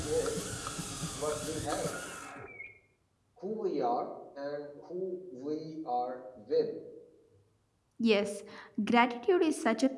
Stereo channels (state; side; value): identical; both; correlation 1.00